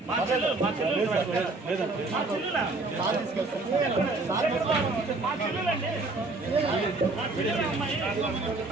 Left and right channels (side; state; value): left; quieter; 3.3 dB